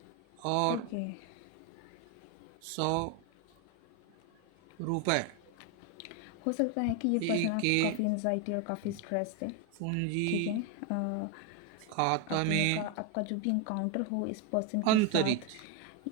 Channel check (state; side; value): different; both; correlation 0.01